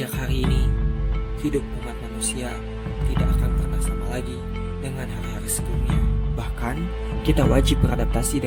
hari ini, hidup umat manusia tidak akan pernah sama lagi dengan hari-hari sebelumnya. Bahkan, kita wajib beradaptasi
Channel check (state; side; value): identical; both; correlation 1.00